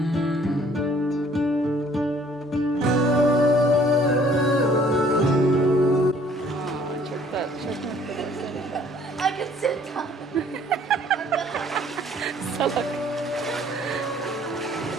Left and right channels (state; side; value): normal; both; correlation 0.58